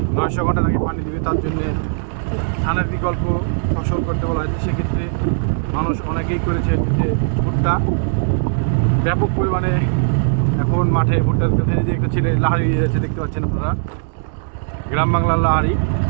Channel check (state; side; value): silent; left; digital silence